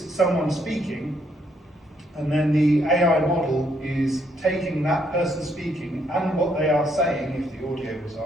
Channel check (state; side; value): normal; both; correlation 0.72